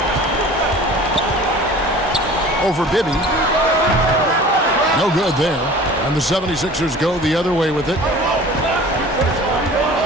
Over Bibby. No good there. And the 76ers go the other way with it.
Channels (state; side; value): normal; both; correlation 0.43